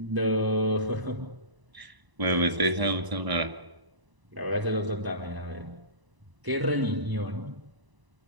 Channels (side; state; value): left; late; 1.0 ms